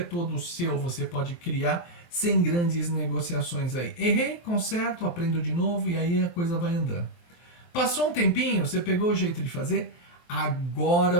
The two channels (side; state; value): right; late; 23 ms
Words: seu, você pode criar sem grandes negociações aí. Errei, conserto, aprendo de novo e aí a coisa vai andando. Passou um tempinho, você pegou o jeito de fazer, agora